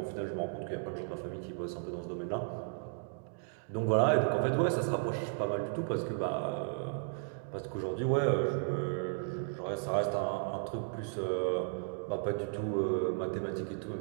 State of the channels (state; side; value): silent; left; digital silence